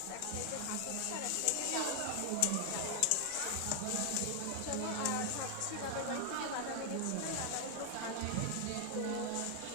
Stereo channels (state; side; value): different; both; correlation 0.00